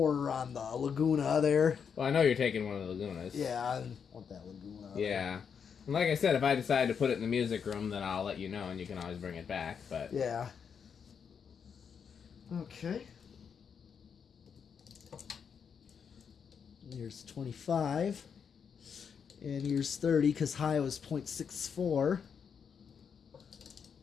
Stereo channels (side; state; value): right; quieter; 6.9 dB